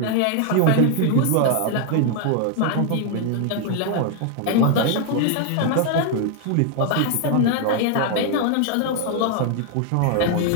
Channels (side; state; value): both; different; correlation 0.00